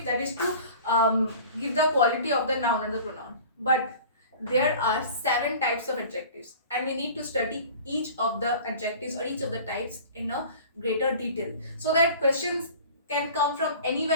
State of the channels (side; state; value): both; inverted; correlation -0.43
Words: that is to give the quality of the noun or the pronoun. But there are 7 types of adjectives, and we need to study each of the adjectives or each of the types in a greater detail, so that questions can come from